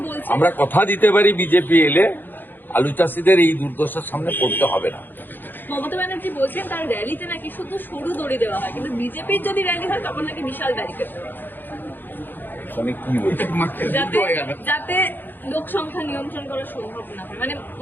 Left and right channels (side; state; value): right; late; 0.093 ms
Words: বলছেন, আমরা কথা দিতে পারি বিজেপি এলে আলু চাষীদের এই দুর্দশার সামনে পড়তে হবে না। মমতা ব্যানার্জি বলছেন তার র্যালিতে নাকি শুধু সরু দড়ি দেওয়া হয়, কিন্তু বিজেপির যদি র্যালি হয় তখন নাকি বিশাল ব্যারিকেড দেওয়া হয়, কি বলছে যাতে লোক সংখ্যা নিয়ন্ত্রণ করা সম্ভব না হয়। মানে